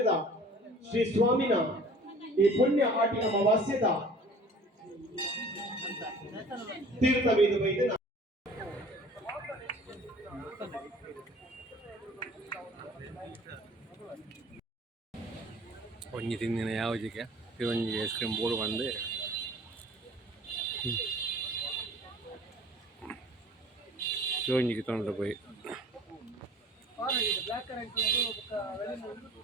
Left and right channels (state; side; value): normal; both; correlation 0.48